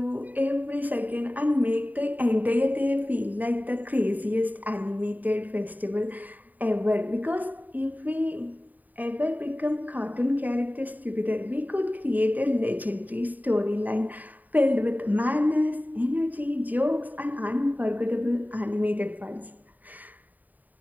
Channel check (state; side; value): late; left; 0.082 ms